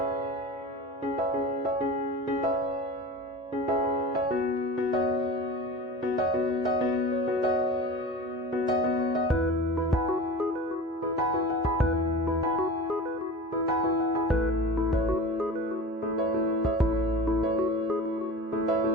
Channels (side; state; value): both; normal; correlation 0.33